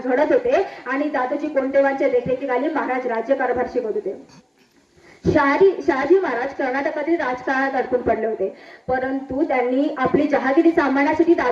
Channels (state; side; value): identical; both; correlation 1.00